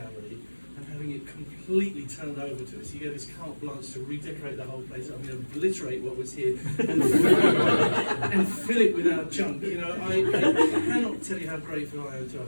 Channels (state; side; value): inverted; both; correlation -1.00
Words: and having it completely turned over to us. He gave us carte blanche to redecorate the whole place. I'm going to obliterate what was here and fill it with our junk. You know, I cannot tell you how grateful I am to